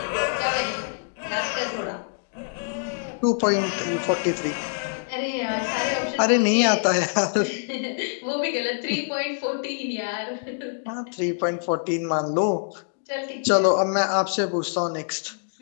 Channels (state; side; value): silent; right; digital silence